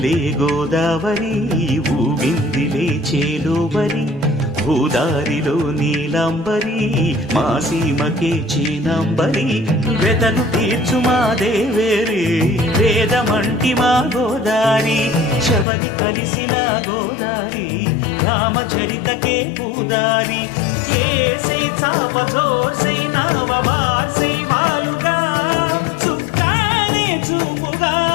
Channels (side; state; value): right; drops out; at 15.7 s